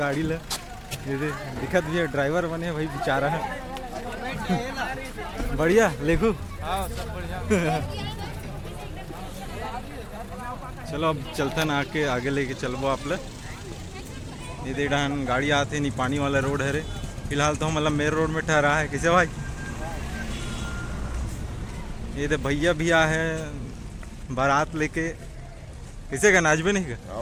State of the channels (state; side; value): identical; both; correlation 1.00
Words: ले, ये दे दिखत भी है ड्राइवर बने भाई बेचारा है। बढ़िया लेखो हाँ सब बढ़िया। चलो अब चलते ना आके आगे लेके चलबो आप ले। ये दे डान गाड़ी आते नहीं, पानी वाला रोड है रे। फिलहाल तो हम मतलब मेन रोड में ठहरा है किसे भाई। ये दे भैया भी आ है बारात लेके, किसे का नाचबे नहीं का